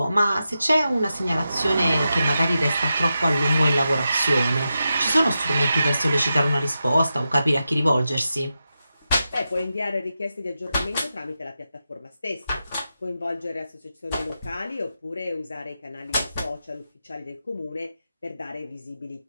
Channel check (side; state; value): both; inverted; correlation -0.89